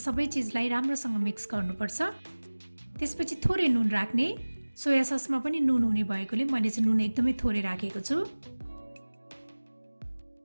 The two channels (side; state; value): both; inverted; correlation -1.00